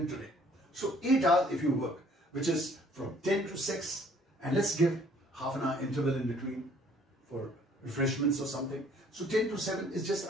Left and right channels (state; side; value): normal; both; correlation 0.59